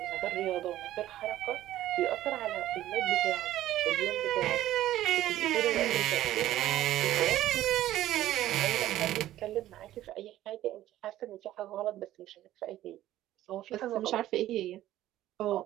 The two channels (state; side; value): quieter; left; 13.9 dB